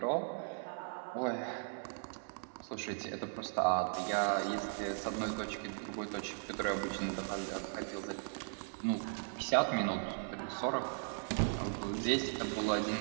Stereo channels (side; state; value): left; silent; 53 dB below the other